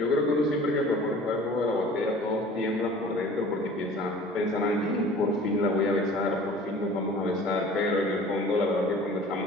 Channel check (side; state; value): both; normal; correlation 0.46